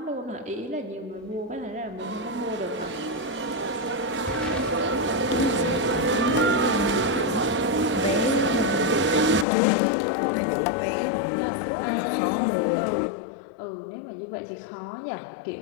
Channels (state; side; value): drops out; right; at 9.5 s